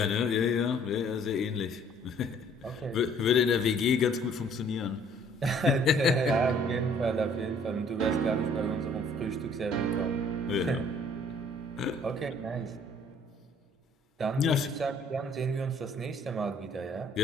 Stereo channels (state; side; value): normal; both; correlation 0.58